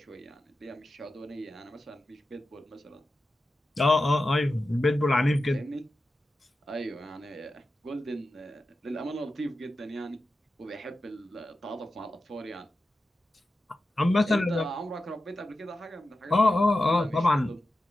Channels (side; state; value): both; normal; correlation 0.92